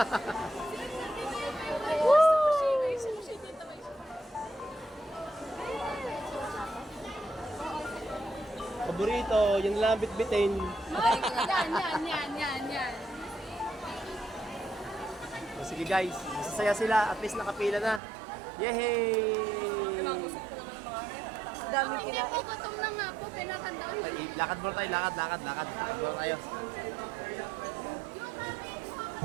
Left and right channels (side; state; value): left; drops out; at 18.0 s